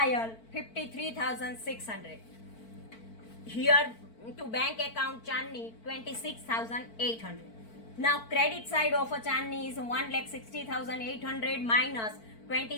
53,600. Here to bank account Chandni 26,800. Now credit side of a Chandni is 1,60,800 minus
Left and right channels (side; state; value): right; late; 4.5 ms